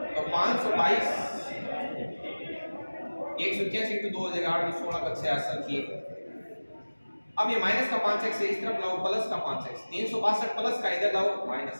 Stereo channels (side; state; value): both; inverted; correlation -1.00